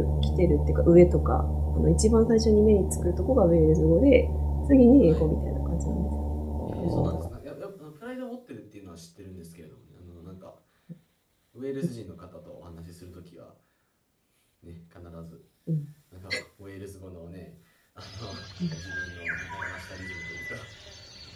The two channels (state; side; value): identical; both; correlation 1.00